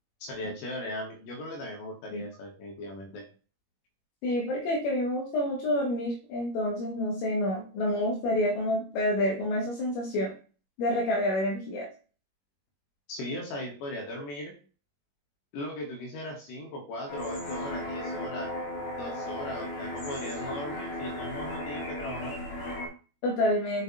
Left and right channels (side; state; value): right; late; 21 ms